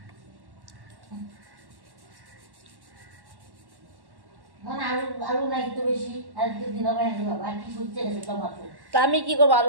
আলু নাই তো বেশি, আর দিন হবে বাবা কি করছে গেছে টমাটো। তা আমি কি করবো?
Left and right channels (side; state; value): left; late; 1.1 ms